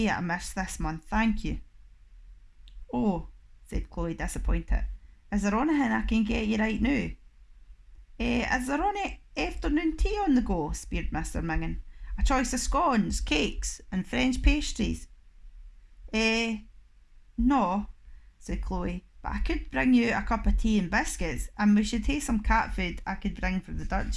it a miss this month, thank you." "Oh," said Chloe, disappointed. "Is there anything I can get you right now?" Is there any afternoon tea on the go?" speered Mr Mingin. A choice of scones, cakes, and French pastries? No, said Chloe, but I could bring you a cup of tea and biscuits, and we should take some cat food I could bring for the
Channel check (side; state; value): both; identical; correlation 1.00